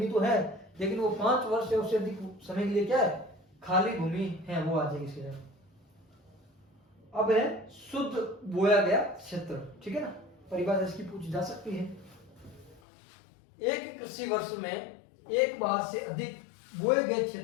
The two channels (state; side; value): drops out; right; at 12.8 s